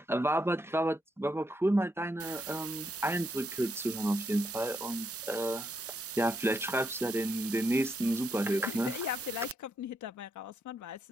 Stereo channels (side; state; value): both; normal; correlation 0.78